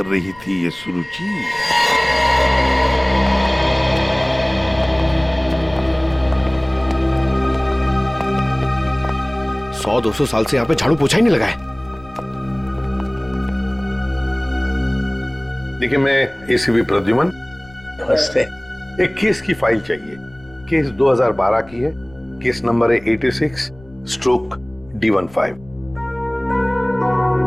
रही थी ये सुरुचि? सौ 200 साल से यहाँ पे झाड़ू पोछा ही नहीं लगा है। देखिए, मैं एसीपी प्रद्युमन। नमस्ते। एक केस की फाइल चाहिए। केस 2012 की है, केस नंबर है 86/D15।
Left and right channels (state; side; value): noise; left; rumble, 24 dB below the sound